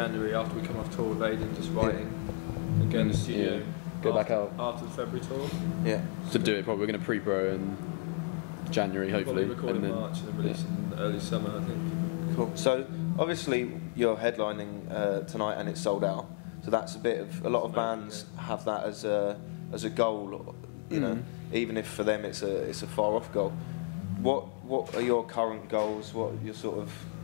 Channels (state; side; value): quieter; right; 39.9 dB